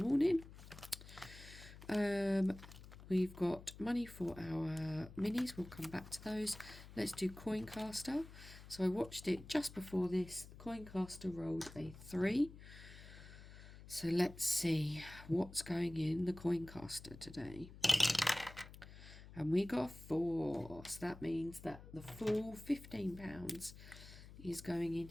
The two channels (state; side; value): noise; left; hum, 16 dB below the sound